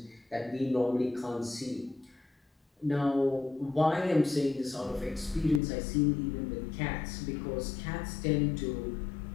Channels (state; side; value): drops out; right; at 5.6 s